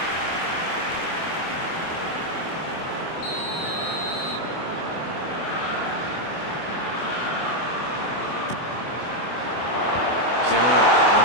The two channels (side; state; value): right; late; 24 ms